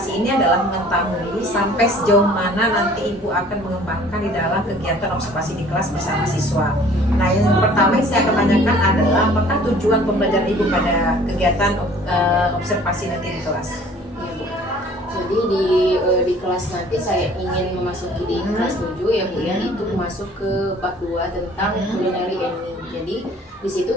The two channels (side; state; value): both; normal; correlation 0.52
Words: ini adalah mengetahui sampai sejauh mana nanti Ibu akan mengembangkan di dalam kegiatan observasi di kelas bersama siswa. Nah, yang pertama yang saya akan tanyakan adalah apakah tujuan pembelajaran Ibu pada kegiatan observasi nanti di kelas? Ya Bu. Jadi di kelas nanti saya ingin memasuki di kelas 7 ya Bu ya, itu masuk ke bab 2 tentang culinary and meal. Jadi di situ